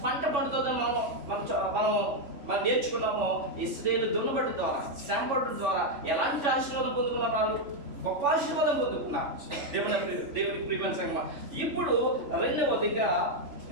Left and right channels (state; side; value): late; left; 3.5 ms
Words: పంట పండుతుందో మనం నేర్చుకున్నామో, ఇశ్రాయేలు దున్నబడి ద్వారా శ్రమపడడం ద్వారా ఎలాంటి ఆశీర్వాదం పొందుకున్నారు? వాళ్ళు గొప్ప ఆశీర్వాదం పొందుకున్నారు. దేవునికి ప్రియమైన సంగమా. ఇప్పుడు రెండవదిగా